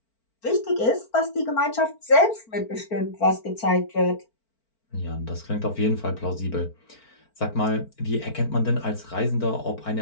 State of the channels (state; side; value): late; right; 4.5 ms